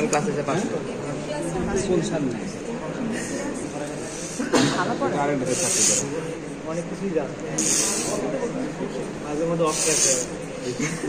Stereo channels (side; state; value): both; identical; correlation 1.00